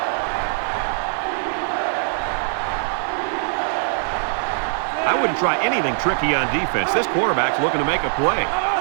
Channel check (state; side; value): silent; left; digital silence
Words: I wouldn't try anything tricky on defense. This quarterback's looking to make a play.